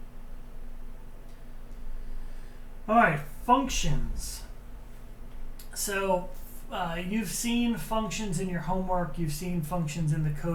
All right, functions. So you've seen functions in your homework. You've seen functions in the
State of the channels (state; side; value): identical; both; correlation 1.00